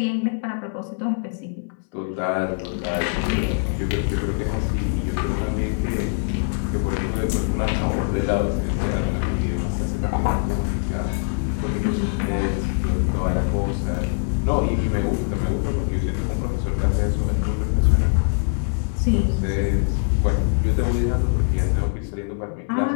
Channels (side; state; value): right; silent; digital silence